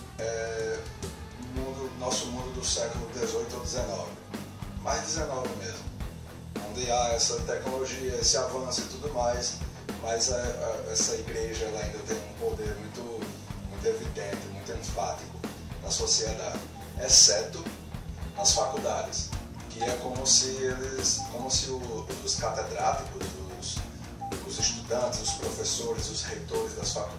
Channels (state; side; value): identical; both; correlation 1.00